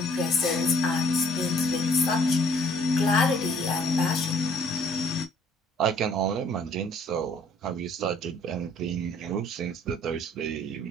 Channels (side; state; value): both; normal; correlation 0.59